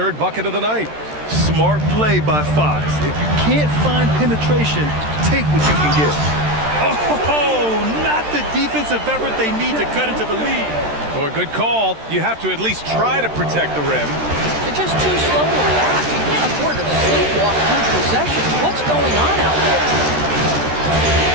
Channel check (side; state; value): left; late; 13 ms